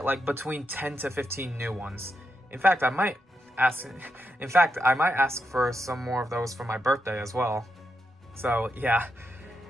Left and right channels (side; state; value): both; normal; correlation 0.84